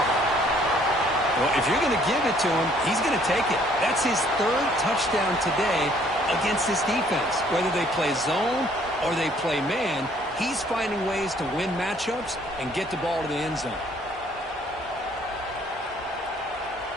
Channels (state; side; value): normal; both; correlation 0.61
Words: Well, if you're going to give it to him, he's going to take it. That's his 3rd touchdown today against this defense. Whether they play zone or they play man, he's finding ways to win matchups and get the ball to the end zone.